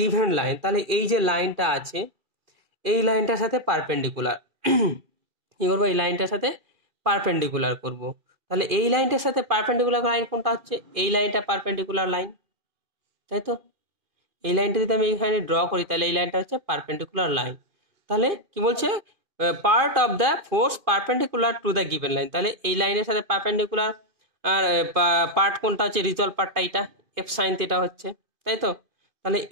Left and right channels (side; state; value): left; late; 2.4 ms